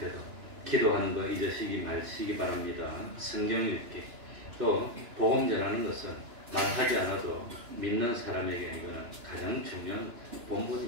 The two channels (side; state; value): left; late; 2.9 ms